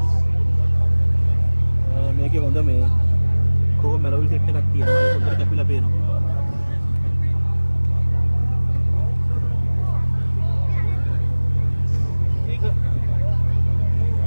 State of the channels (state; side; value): inverted; both; correlation -1.00